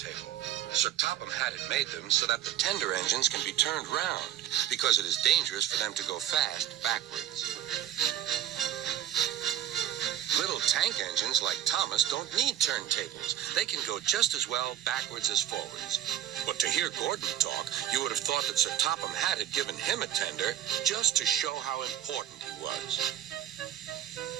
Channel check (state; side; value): quieter; left; 11.5 dB